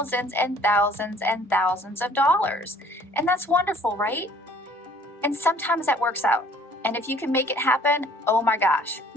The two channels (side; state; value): both; normal; correlation 0.55